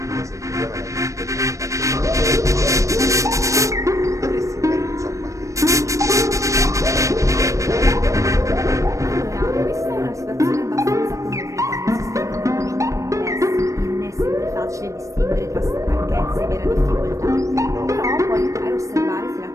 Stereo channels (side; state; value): left; late; 0.15 ms